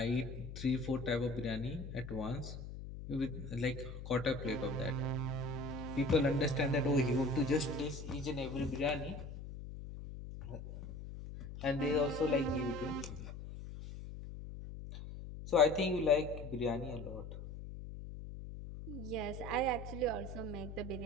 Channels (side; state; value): left; noise; hum, 10 dB below the sound